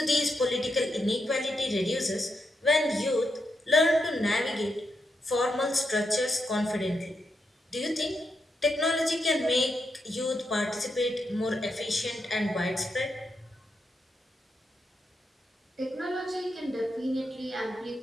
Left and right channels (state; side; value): normal; both; correlation 0.83